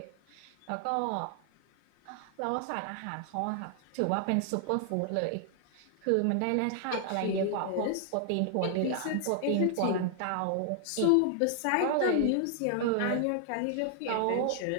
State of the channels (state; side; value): different; both; correlation 0.00